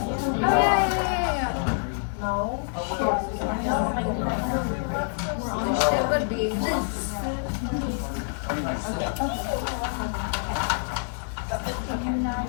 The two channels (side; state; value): right; silent; digital silence